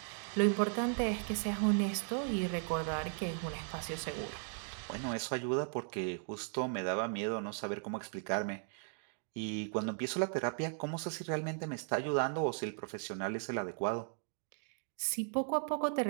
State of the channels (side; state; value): left; silent; 53 dB below the other